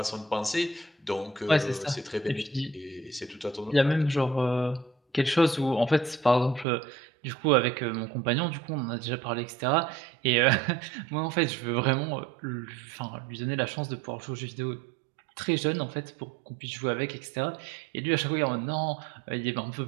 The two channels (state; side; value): drops out; left; at 6.7 s